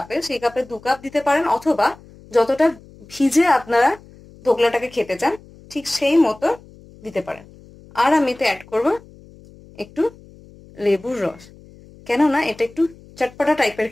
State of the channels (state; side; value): noise; left; hum, 23 dB below the sound